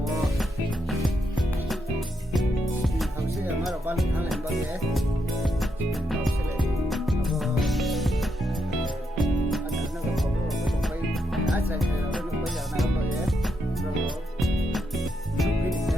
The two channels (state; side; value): normal; both; correlation 0.80